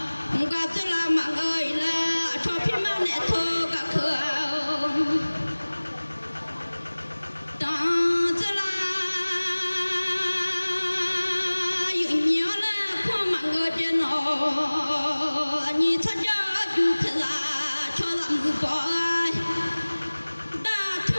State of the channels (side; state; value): both; inverted; correlation -1.00